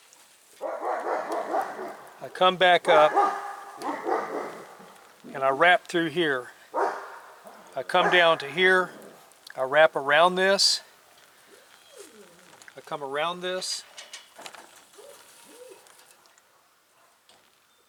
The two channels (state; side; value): identical; both; correlation 1.00